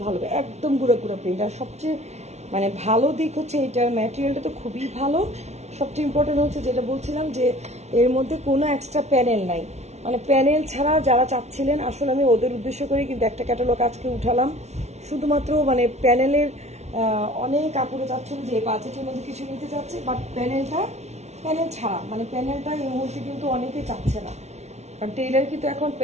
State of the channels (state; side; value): late; left; 0.32 ms